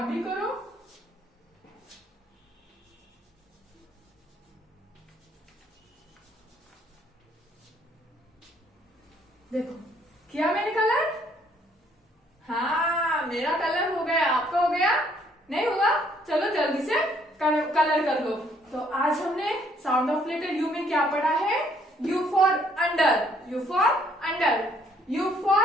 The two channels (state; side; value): normal; both; correlation 0.65